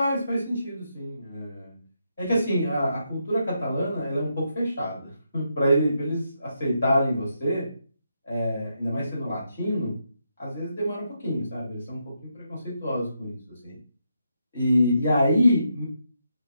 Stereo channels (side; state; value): both; inverted; correlation -0.81